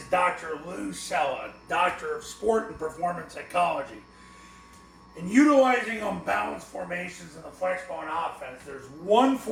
Dr. Lou Cella, Doctor of Sport and Performance Psychology. In utilizing unbalanced formations in the Flexbone offense, there's one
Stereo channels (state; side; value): identical; both; correlation 1.00